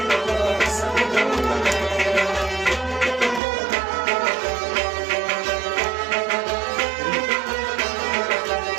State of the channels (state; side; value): drops out; left; at 3.4 s